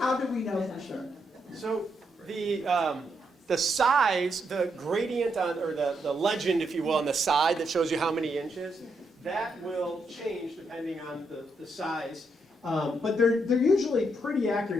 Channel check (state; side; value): normal; both; correlation 0.79